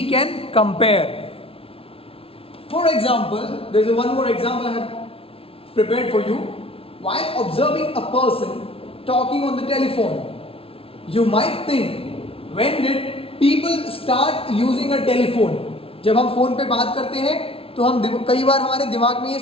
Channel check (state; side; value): late; right; 0.27 ms